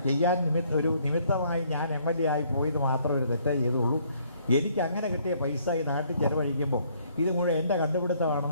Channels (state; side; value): inverted; both; correlation -0.65